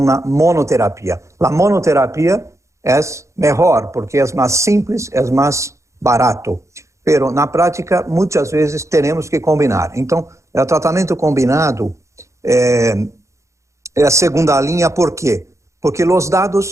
monoterapia. La monoterapia es mejor porque es más simple, es más barato, pero na práctica muchas veces tenemos que combinar. Então, el tratamento combinado é a segunda linha. ¿Por quê? Porque los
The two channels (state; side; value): late; left; 0.14 ms